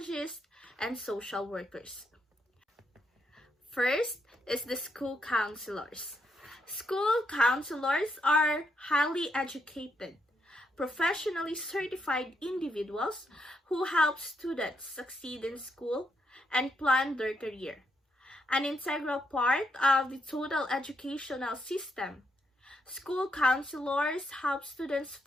and social workers. First is the school counselors. School counselors are highly educated, professionally certified individuals who help students succeed in school and plan their career. An integral part of the total educational system. School counselors help students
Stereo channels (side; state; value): both; normal; correlation 0.78